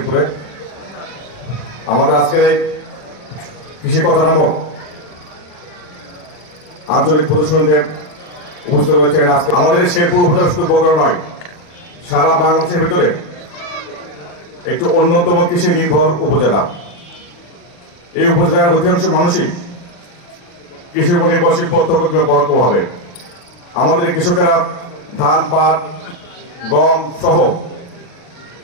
আমাদের আজকে কৃষি কথা নামক আঞ্চলিক প্রদর্শনীতে উপস্থিত রয়েছেন। আজকে আমাদের শেরপুর উপজেলা শুধু বগুড়া নয়, সারা বাংলাদেশের ভিতরে একটি অন্যতম কৃষি নির্ভর উপজেলা। এই উপজেলার অধিকাংশ মানুষই কৃষির উপর নির্ভরশীল প্রত্যক্ষ পরোক্ষভাবে। আমাদের কৃষকেরা ধান, পাট, গম সহ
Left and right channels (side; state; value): right; late; 39 ms